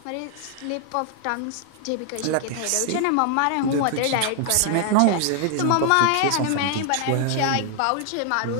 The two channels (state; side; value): different; both; correlation 0.00